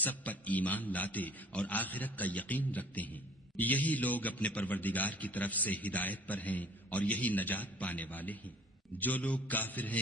پر ایمان لاتے اور آخرت کا یقین رکھتے ہیں، یہی لوگ اپنے پروردگار کی طرف سے ہدایت پر ہیں اور یہی نجات پانے والے ہیں۔ جو لوگ کافر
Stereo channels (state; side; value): normal; both; correlation 0.51